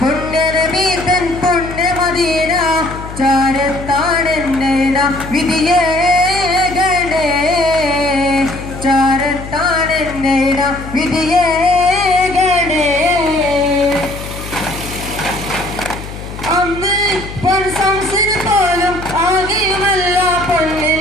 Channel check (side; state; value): left; noise; hum, 11 dB below the sound